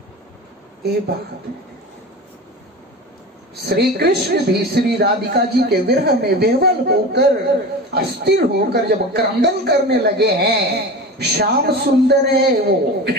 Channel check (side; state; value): both; normal; correlation 0.30